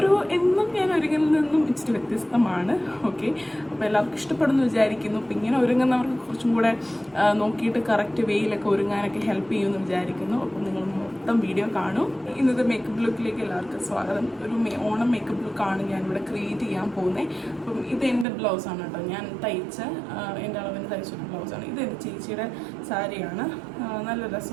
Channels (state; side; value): drops out; left; at 18.2 s